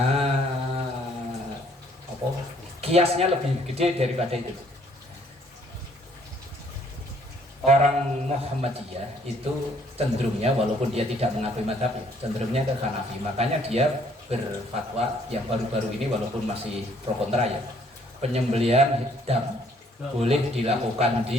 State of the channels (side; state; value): both; normal; correlation 0.63